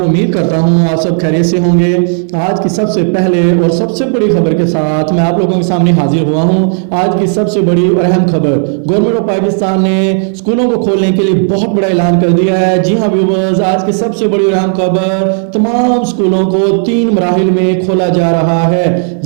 उम्मीद करता हूं आप सब खैरियत से होंगे। आज की सबसे पहले और सबसे बड़ी खबर के साथ मैं आप लोगों के सामने हाजिर हुआ हूं। आज की सबसे बड़ी और अहम खबर, गवर्नमेंट ऑफ पाकिस्तान ने स्कूलों को खोलने के लिए बहुत बड़ा ऐलान कर दिया है। जी हां व्यूअर्स, आज की सबसे बड़ी और अहम खबर, तमाम स्कूलों को 3 मराहिल में खोला जा रहा है।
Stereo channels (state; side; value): silent; left; digital silence